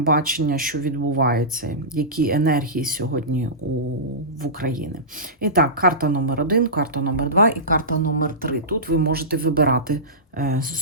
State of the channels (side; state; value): both; normal; correlation -0.19